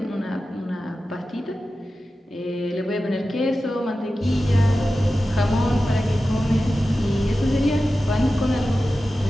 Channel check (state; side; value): normal; both; correlation 0.94